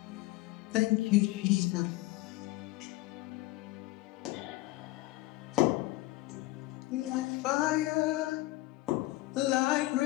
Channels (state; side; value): quieter; right; 19.4 dB